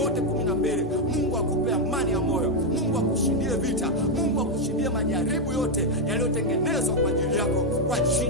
12 Mungu akupe amani ya moyo, Mungu akushindie vita, Mungu akushindie majaribu yote yaliyotengenezwa kwa ajili yako kwa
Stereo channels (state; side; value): normal; both; correlation 0.03